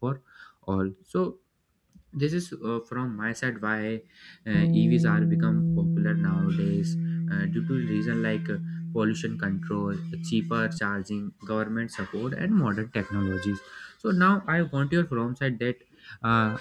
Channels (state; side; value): identical; both; correlation 1.00